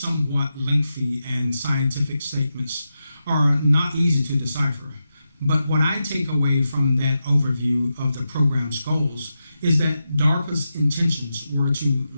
lengthy and scientific statements are not easy to decipher, but what I take away from that overview of the program's goals is that DARPA's intentions were to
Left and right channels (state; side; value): inverted; both; correlation -0.88